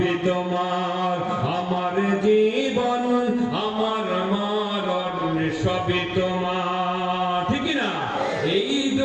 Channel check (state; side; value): identical; both; correlation 1.00